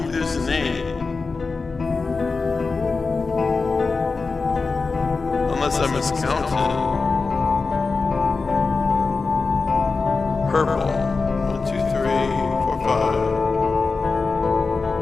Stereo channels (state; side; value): quieter; right; 4.2 dB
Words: there's a name. Unless I miscounted. Purple. 1, 2, 3, 4, 5.